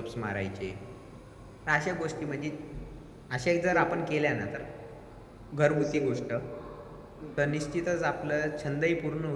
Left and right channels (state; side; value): identical; both; correlation 1.00